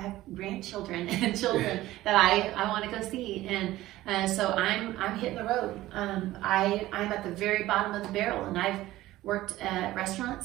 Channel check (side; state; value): left; quieter; 16.1 dB